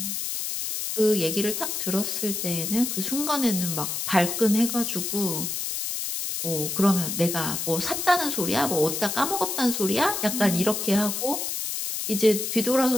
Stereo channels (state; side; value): noise; left; hiss, 3 dB below the sound